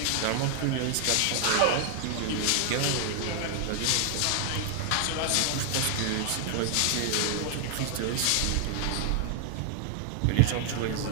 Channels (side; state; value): both; different; correlation 0.00